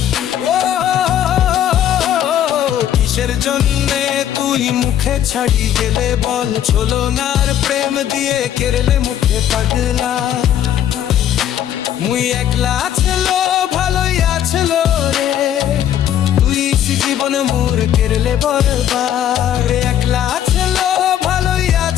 ও কিসের জন্যে তুই মুখে ছাড়ি গেলে বল ছলনার প্রেম দিয়ে কেরলে মুখে পাগলা মুই একলা ছিল ভালোই আছিল রে তুই জীবন মোর কেরলে বরবাদ একলা ছিল ভালোই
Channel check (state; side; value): quieter; right; 10.6 dB